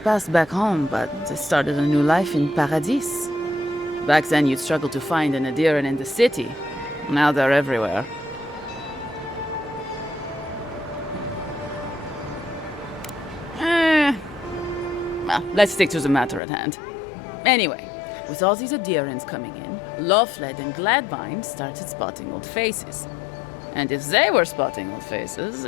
past back home, but they started a new life in Paradis. Back then, you'd struggle to find an Adiran in the city. Now they're everywhere. Well, let's stick to the matter at hand. Anyway, with all these Adirans coming in, Lawfled and Gladvine started spotting old faces. And if they were spotting old faces,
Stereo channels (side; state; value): right; drops out; at 16.4 s